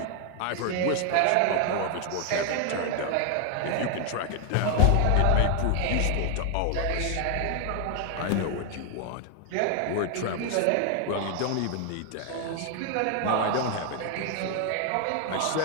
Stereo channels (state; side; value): different; both; correlation 0.00